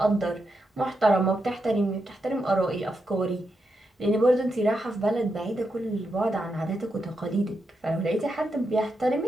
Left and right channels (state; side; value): normal; both; correlation 0.85